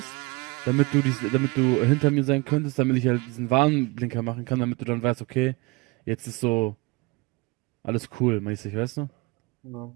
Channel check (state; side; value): quieter; left; 25.4 dB